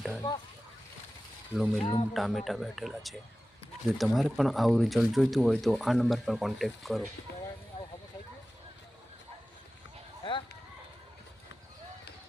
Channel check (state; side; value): normal; both; correlation 0.95